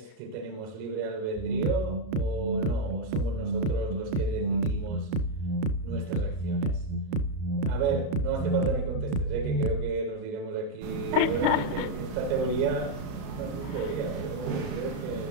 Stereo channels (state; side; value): late; left; 33 ms